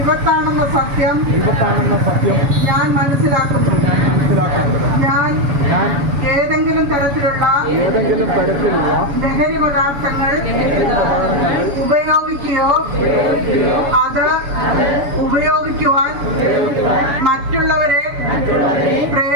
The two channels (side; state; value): left; late; 7.0 ms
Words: സത്യം ഞാൻ മനസ്സിലാക്കുന്നു. ഞാൻ ഏതെങ്കിലും തരത്തിലുള്ള ലഹരി പദാർത്ഥങ്ങൾ ഉപയോഗിക്കുകയോ അത് ഉപയോഗിക്കുവാൻ മറ്റുള്ളവരെ